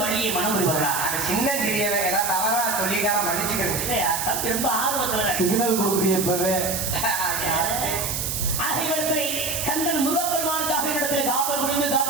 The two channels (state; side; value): noise; right; hiss, 2 dB below the sound